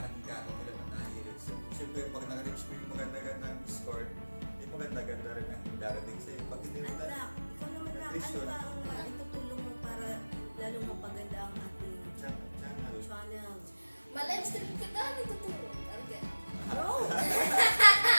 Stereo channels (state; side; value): inverted; both; correlation -1.00